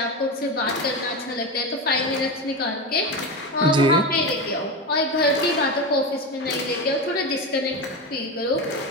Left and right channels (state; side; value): normal; both; correlation 0.19